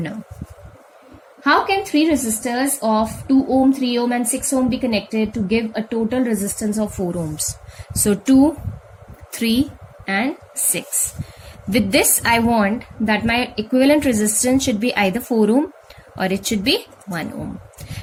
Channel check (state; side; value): identical; both; correlation 1.00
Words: How can 3 resistors of 2 ohm, 3 ohm and 6 ohm be connected to give a total resistance of 4 ohms? So 2, 3 and 6. With this, I want that my equivalent resistance should be either 4 ohm or it should be 1 ohm.